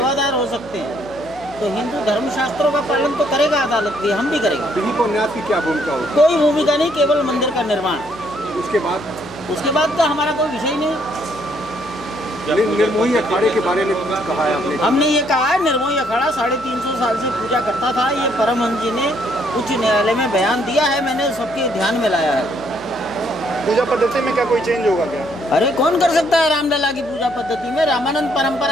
हो सकते हैं। तो हिंदू धर्मशास्त्रों का पालन तो करेगा अदालत भी, हम भी करेंगे। दिलीप और न्यास की क्या भूमिका होगी? कोई भूमिका नहीं, केवल मंदिर का निर्माण। उसके बाद का हमारा कोई विषय नहीं। निर्मोही अखाड़े के बारे में कुछ कहा है आपने? हमने ये कहा है, निर्मोही अखाड़ा 350 साल से पूजा करता था। ये परमहंस जी ने उच्च न्यायालय में बयान दिया है, मैंने सबके ध्यान में लाया है। पूजा पद्धति में क्या कोई चेंज होगा क्या? अरे कौन कर सकता है रामलला की पूजा पद्धति में? रामानंद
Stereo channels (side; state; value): left; noise; hum, 22 dB below the sound